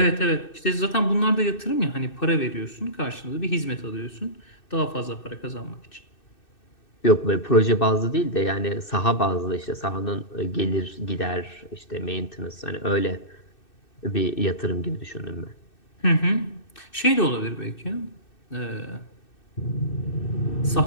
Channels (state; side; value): late; right; 2.6 ms